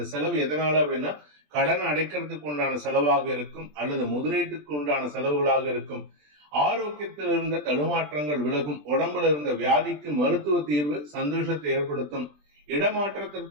செலவு எதனால அப்படின்னா கடன் அடைக்கிறதுக்கு உண்டான செலவாக இருக்கும் அல்லது முதலீட்டுக்கு உண்டான செலவுகளாக இருக்கும். ஆரோக்கியத்தில் இருந்த தடுமாற்றங்கள் விலகும். உடம்புல இருந்த வியாதிக்கு மருத்துவ தீர்வு சந்தோஷத்தை ஏற்படுத்தும்.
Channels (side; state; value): left; late; 20 ms